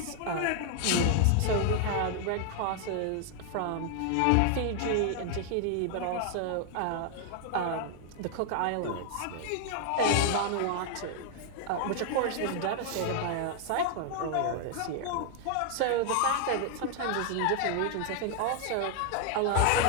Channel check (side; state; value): both; different; correlation 0.00